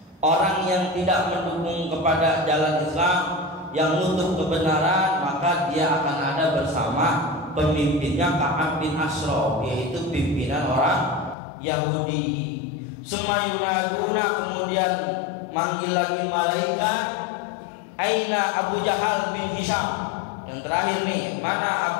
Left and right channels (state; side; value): drops out; right; at 11.4 s